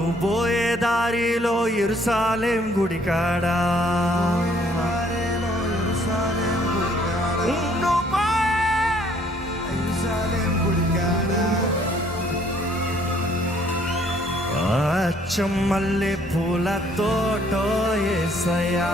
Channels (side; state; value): both; normal; correlation 0.63